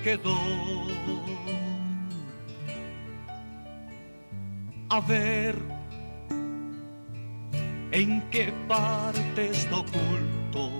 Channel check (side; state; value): both; inverted; correlation -1.00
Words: quedó, a ver en qué parte está